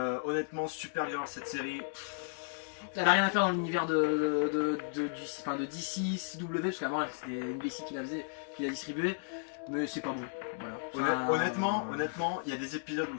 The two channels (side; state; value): right; silent; digital silence